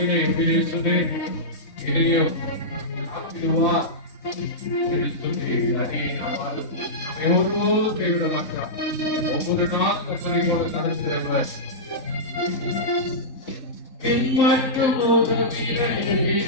பேசுதே இதையோ ஆக்கிடுவா என்று சொல்லி அதே நாள் நம்மை ஒருபோதும் கைவிட மாட்டார். ஒவ்வொரு நாள் கற்பனை போல நடத்துகிறவர் பின்பற்றும் உதவினை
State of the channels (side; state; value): right; late; 4.0 ms